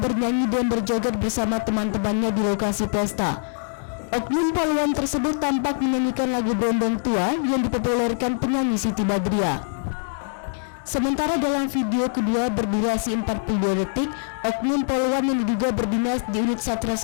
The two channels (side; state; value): right; silent; 63 dB below the other